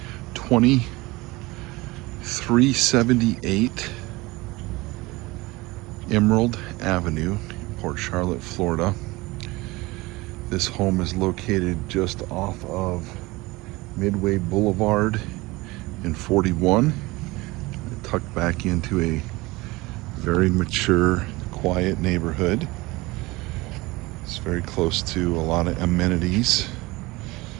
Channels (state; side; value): quieter; left; 21.9 dB